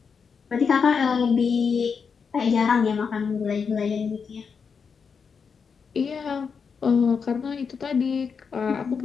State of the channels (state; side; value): quieter; right; 5.9 dB